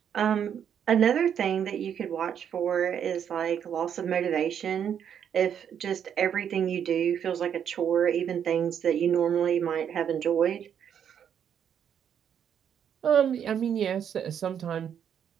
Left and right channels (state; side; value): quieter; left; 8.6 dB